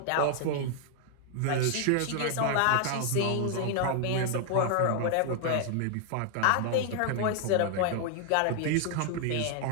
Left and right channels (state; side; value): different; both; correlation 0.00